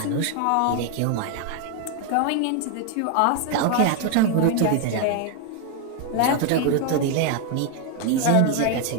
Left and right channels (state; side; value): different; both; correlation 0.01